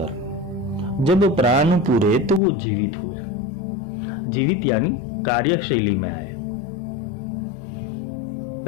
जब प्राण पूरे, तो वो जीवित हुए। जीवित यानी कार्यशैली में आए।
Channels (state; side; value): drops out; right; at 2.4 s